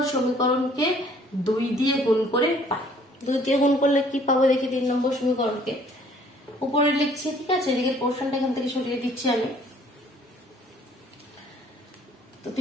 সমীকরণকে 2 দিয়ে গুণ করে পাই। 2 দিয়ে গুণ করলে কি পাবো দেখি, 3 নম্বর সমীকরণকে উপরে লিখছি, ঠিক আছে, এদিকে পোর্শনটা এখান থেকে সরিয়ে দিচ্ছি আমি। তো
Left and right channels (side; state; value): both; normal; correlation 0.58